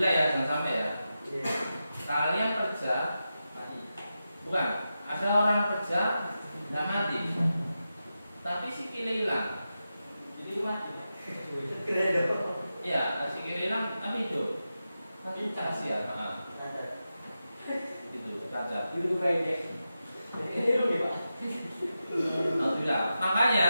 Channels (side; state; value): both; inverted; correlation -0.91